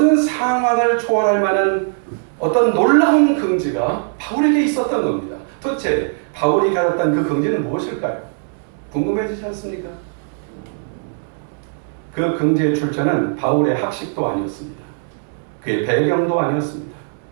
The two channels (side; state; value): left; silent; 66 dB below the other